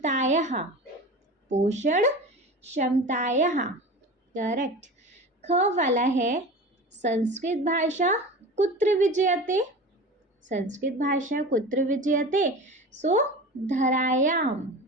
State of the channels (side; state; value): both; normal; correlation 0.33